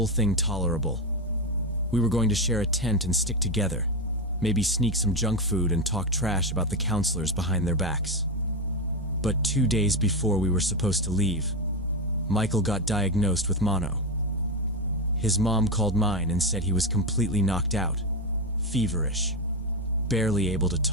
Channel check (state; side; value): normal; both; correlation 0.12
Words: thing tolerable. We were going to share a tent and stick together, maybe sneak some junk food and talk trash about the counselors behind their backs. But 2 days before we were supposed to leave, Michael got diagnosed with mono. His mom called mine and said he was completely knocked out, feverish, barely able to